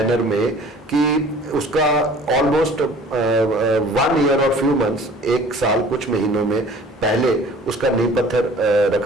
में कि उसका ऑलमोस्ट 1 ईयर और फ्यू मंथ्स, 1 साल कुछ महीनों में पहले उसका नींव पत्थर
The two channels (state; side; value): normal; both; correlation 0.49